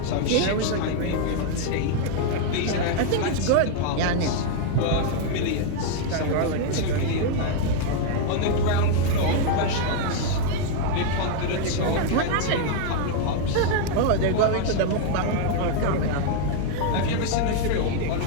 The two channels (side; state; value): both; different; correlation 0.00